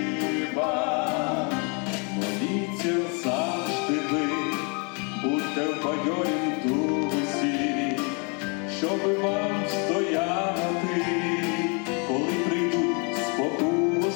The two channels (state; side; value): quieter; right; 34.9 dB